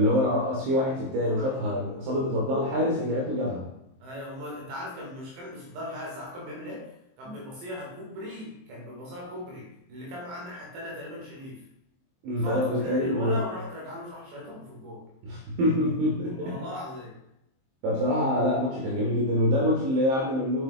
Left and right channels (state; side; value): late; left; 23 ms